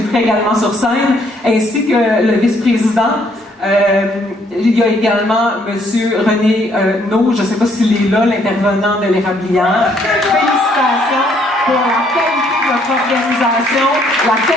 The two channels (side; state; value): both; normal; correlation 0.67